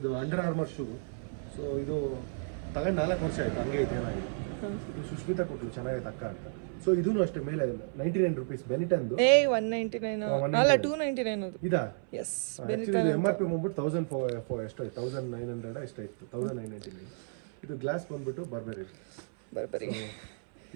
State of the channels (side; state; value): left; silent; 56 dB below the other